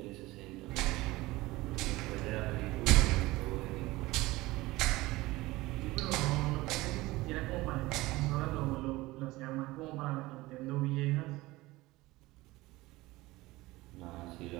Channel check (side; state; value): left; quieter; 19.7 dB